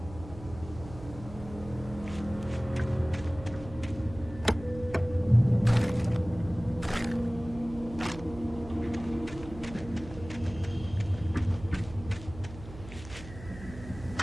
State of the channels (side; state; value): right; noise; hum, 14 dB below the sound